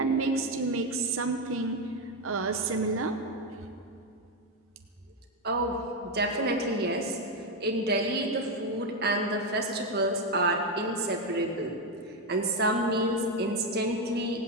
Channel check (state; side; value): normal; both; correlation 0.07